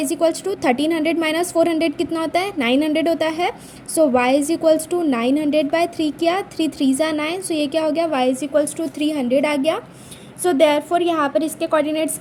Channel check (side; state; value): both; identical; correlation 1.00